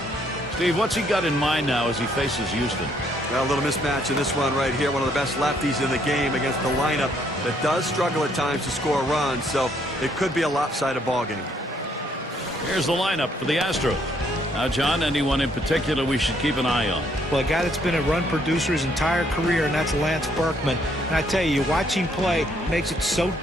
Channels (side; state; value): both; normal; correlation 0.69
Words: Steve, what's he got in mind now as he faces Houston? Well, a little mismatch in this one right here. One of the best lefties in the game against the lineup that does struggle at times to score runs, so it could be a lopsided ball game. Here's the lineup for the Astros. Now, John, anyone in particular we should keep an eye on? Well, a guy that's been a run producer his entire career, and that's Lance Berkman. And I tell you, watching play makes it so